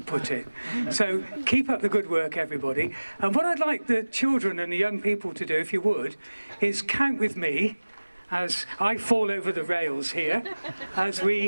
put it. So keep up the good work, everybody. And what I'd like the children and the young people to do, if you would, is count with me as I fall over the rails here, as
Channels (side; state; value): both; inverted; correlation -1.00